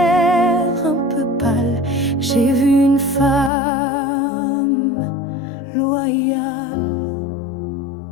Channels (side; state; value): right; drops out; at 3.5 s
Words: un peu pâle, j'ai vu une femme loyale.